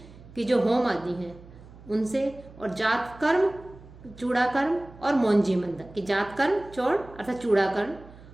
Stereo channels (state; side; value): noise; right; hum, 20 dB below the sound